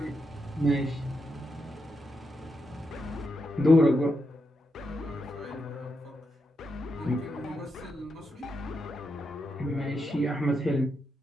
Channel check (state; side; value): normal; both; correlation 0.84